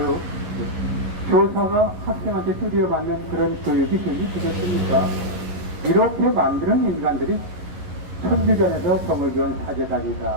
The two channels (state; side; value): late; left; 11 ms